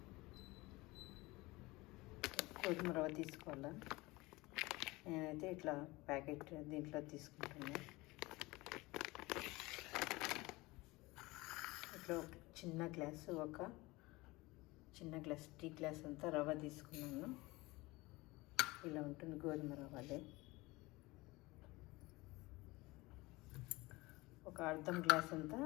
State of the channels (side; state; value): right; quieter; 21.8 dB